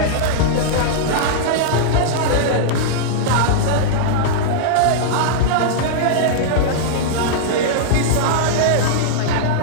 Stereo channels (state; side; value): different; both; correlation -0.02